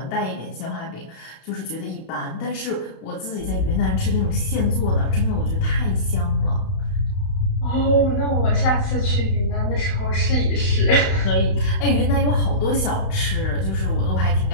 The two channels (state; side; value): late; right; 31 ms